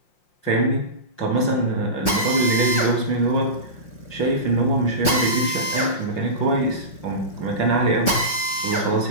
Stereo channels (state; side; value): late; right; 5.6 ms